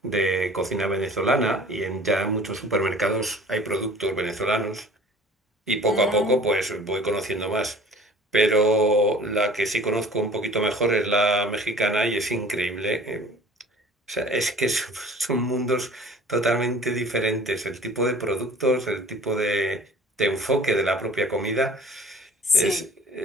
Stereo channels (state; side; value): normal; both; correlation 0.47